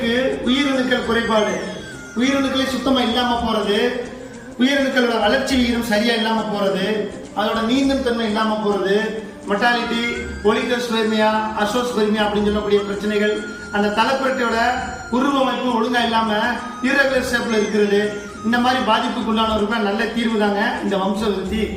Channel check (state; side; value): identical; both; correlation 1.00